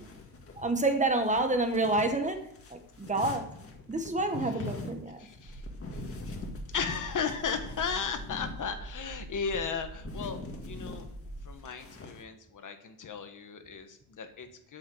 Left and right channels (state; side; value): normal; both; correlation 0.13